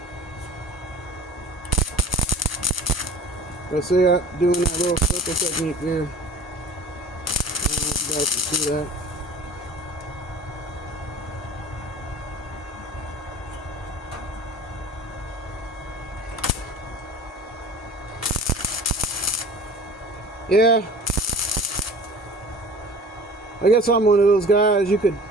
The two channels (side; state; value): both; normal; correlation 0.43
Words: Let's see, I'm doing that little circle technique here. I don't know if you guys can see that. Yeah, I guess I'm one of those guys. You could